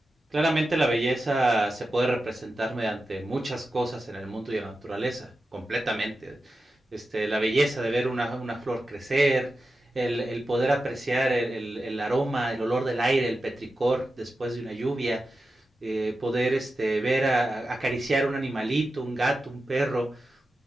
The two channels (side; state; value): both; normal; correlation 0.92